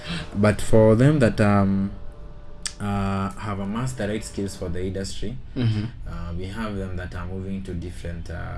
But for them that have amassed the right skills for the industry, we have them that are moving to different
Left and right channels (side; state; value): both; identical; correlation 1.00